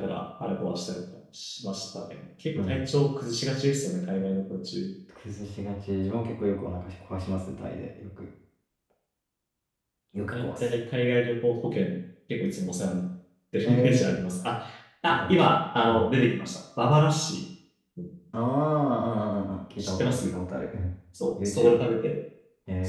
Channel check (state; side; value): identical; both; correlation 1.00